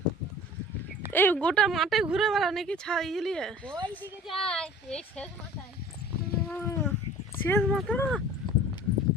এই গোটা মাঠে ঘুরে বেড়া নাকি ছাইলিয়ে শেষ মাথা।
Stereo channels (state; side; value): normal; both; correlation 0.45